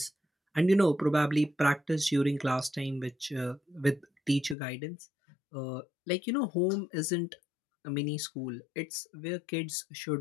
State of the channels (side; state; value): right; drops out; at 4.5 s